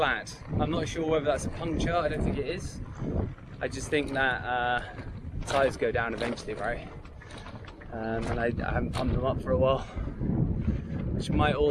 I'm not sure whether that's a puncture. I don't think it is. I just think that tyres go down eventually, right? And I haven't pumped them up for a while, which might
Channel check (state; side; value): identical; both; correlation 1.00